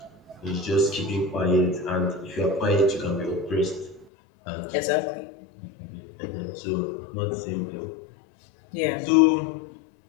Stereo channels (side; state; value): right; drops out; at 4.0 s